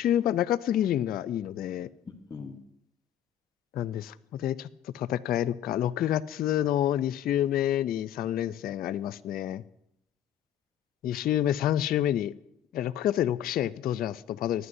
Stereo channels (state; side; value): quieter; right; 11.1 dB